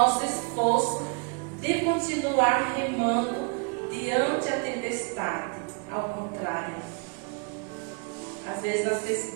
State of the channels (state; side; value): quieter; left; 34.2 dB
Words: esforço de continuar remando diante a tempestade. Ao contrário, às vezes